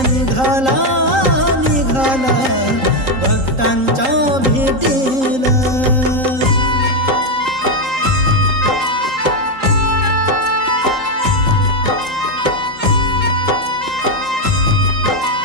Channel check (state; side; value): late; left; 3.8 ms